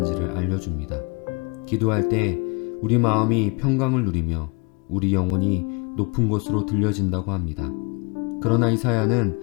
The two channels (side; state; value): right; quieter; 30.6 dB